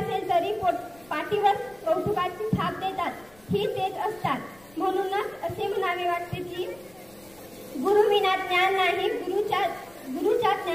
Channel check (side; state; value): left; noise; rumble, 27 dB below the sound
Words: तरी पाठीवर कौतुकाची थाप देतात. ही तेच असतात. म्हणूनच असे म्हणावे वाटते की गुरुविना ज्ञान नाही, गुरुच्या